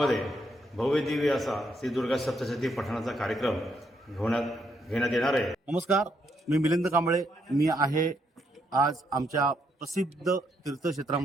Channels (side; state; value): both; normal; correlation 0.76